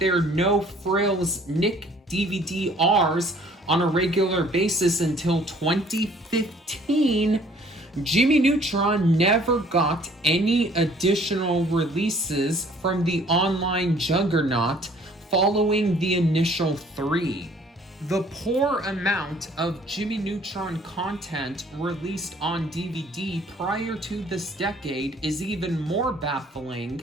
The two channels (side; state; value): both; normal; correlation 0.57